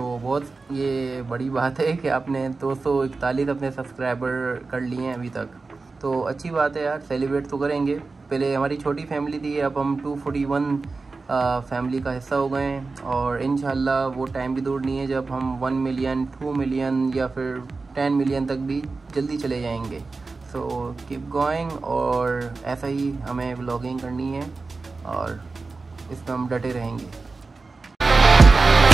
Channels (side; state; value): left; quieter; 3.9 dB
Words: बहुत ये बड़ी बात है कि आपने 241 अपने सब्सक्राइबर कर लिए हैं अभी तक, तो अच्छी बात है यार, सेलिब्रेट तो करेंगे। पहले हमारी छोटी फैमिली थी, अब हम 241 फैमिली का हिस्सा हो गए हैं और इंशाल्लाह वो टाइम भी दूर नहीं है जब हम 1 मिलियन 2 मिलियन या फिर 10 मिलियन तक भी जल्दी चले जाएंगे। सो कीप गोइंग, और ऐसा ही हमें व्लॉगिंग करनी है और इसमें हम डटे रहेंगे।